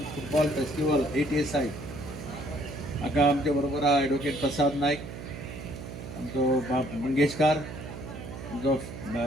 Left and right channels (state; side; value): noise; right; hum, 10 dB below the sound